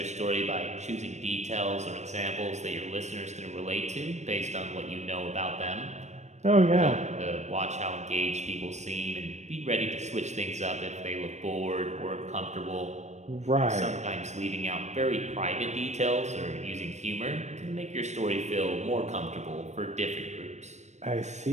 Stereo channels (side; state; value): left; late; 0.33 ms